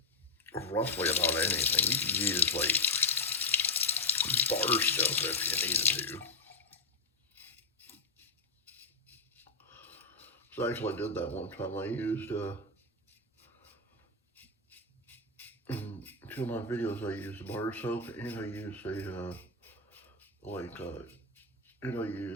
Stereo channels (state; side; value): quieter; right; 3.3 dB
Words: roughly about anything. You can use like bar stuff if you needed to. So actually I did that one time. I used, in two of my videos I used bar soap and I used